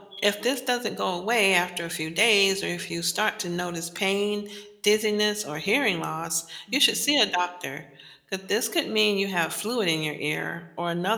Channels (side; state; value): both; identical; correlation 1.00